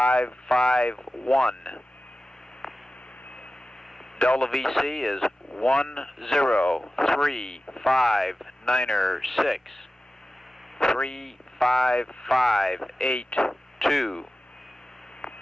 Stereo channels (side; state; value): both; normal; correlation 0.95